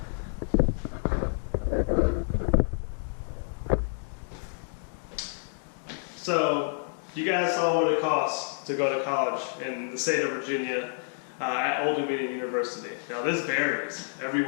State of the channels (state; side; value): silent; right; digital silence